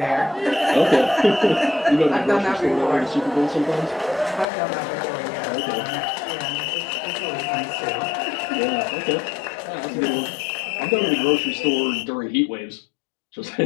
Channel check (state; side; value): drops out; right; at 4.5 s